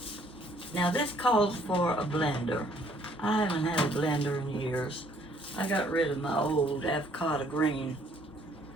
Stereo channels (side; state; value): both; normal; correlation 0.63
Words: Now this calls for a blender. I haven't had a blender in years. I got rid of my old avocado green